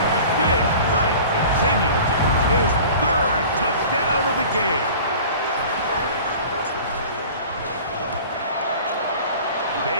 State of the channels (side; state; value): both; inverted; correlation -0.42